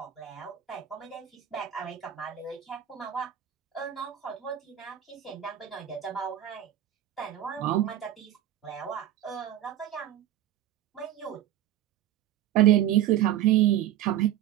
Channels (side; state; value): left; quieter; 11.9 dB